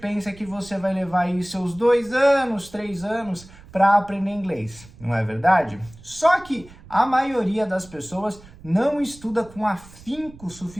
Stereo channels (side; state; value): right; noise; rumble, 21 dB below the sound